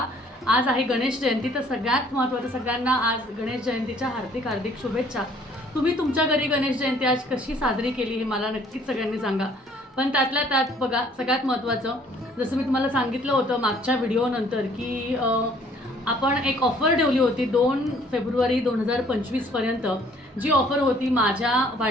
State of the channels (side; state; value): both; normal; correlation 0.59